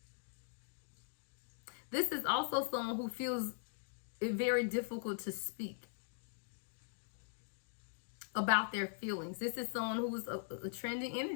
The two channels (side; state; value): right; silent; digital silence